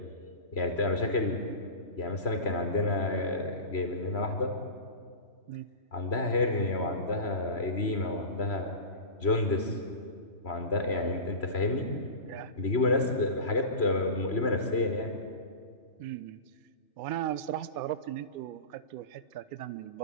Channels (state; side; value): late; right; 3.0 ms